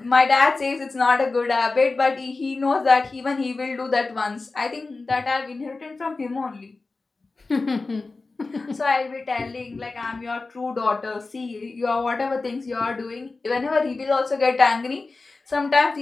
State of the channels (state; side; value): quieter; right; 3.7 dB